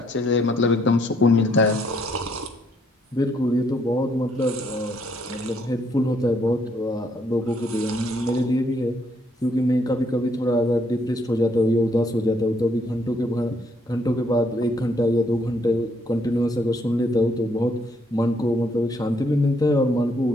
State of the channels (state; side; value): normal; both; correlation 0.70